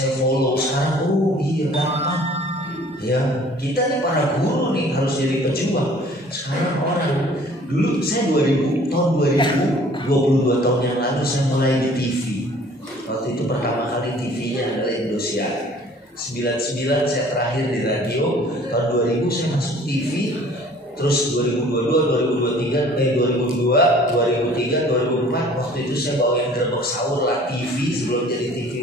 follow sekarang. Oh iya gampang ya. Kita nih para guru nih harus jadi pejuang. Sekarang orang, dulu saya tahun 2022 tahun yang lalu saya mulai di TV. Waktu itu pertama kali TV-nya adalah Indosiar. 99 saya terakhir di radio. Tahun 2000 saya masuk TV. Terus 2022, 2003, 2004 waktu itu saya bawain Gerbek Sahur lah TV sebelum jadi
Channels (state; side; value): normal; both; correlation 0.52